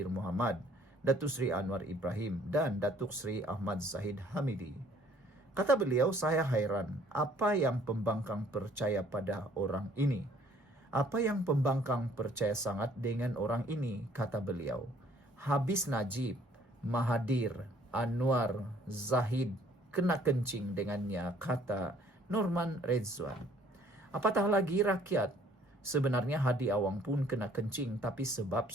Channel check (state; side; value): normal; both; correlation 0.59